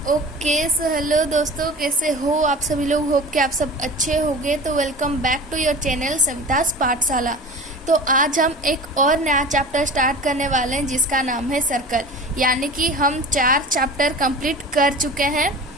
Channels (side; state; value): both; normal; correlation 0.36